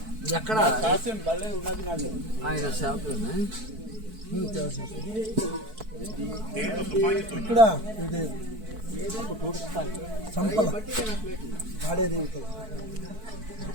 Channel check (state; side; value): late; left; 4.6 ms